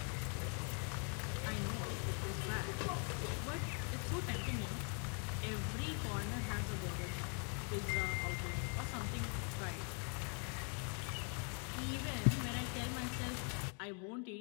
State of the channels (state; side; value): quieter; right; 39.9 dB